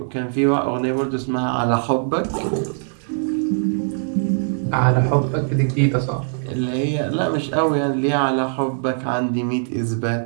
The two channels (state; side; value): silent; left; 65 dB below the other